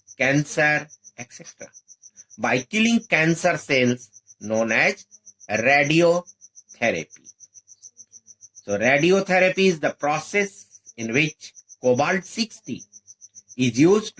cancer, etc. by killing cancer cells known as radiotherapy. So radiotherapy is the process in which cobalt-60 is used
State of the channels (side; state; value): both; identical; correlation 1.00